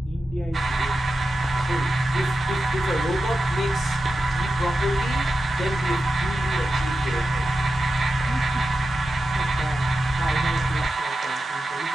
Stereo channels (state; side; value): normal; both; correlation 0.90